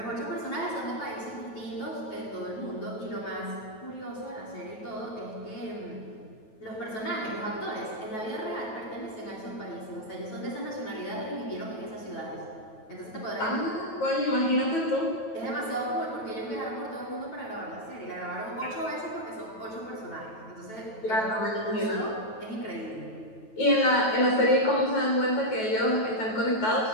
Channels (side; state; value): right; late; 9.2 ms